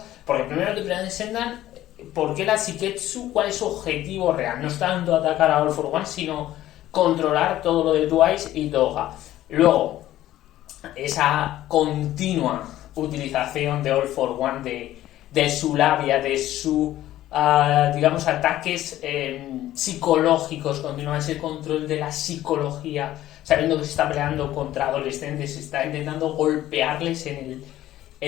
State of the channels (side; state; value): right; quieter; 14.0 dB